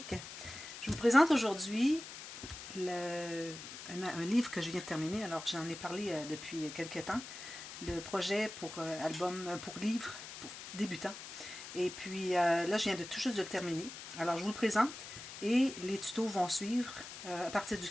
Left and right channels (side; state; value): left; noise; hiss, 11 dB below the sound